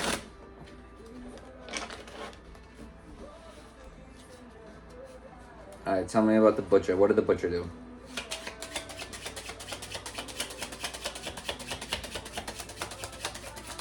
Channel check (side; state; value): both; identical; correlation 1.00